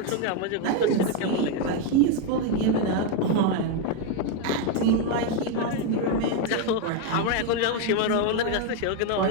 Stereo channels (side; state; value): both; different; correlation 0.01